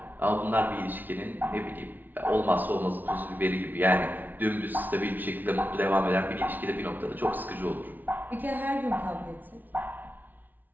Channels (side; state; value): left; late; 0.085 ms